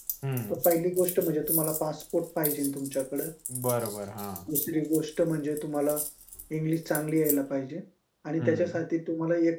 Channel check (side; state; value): both; identical; correlation 1.00